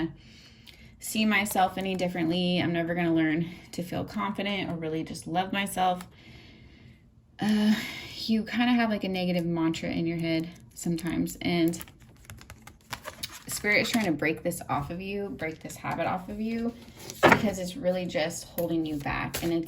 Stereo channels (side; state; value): both; identical; correlation 1.00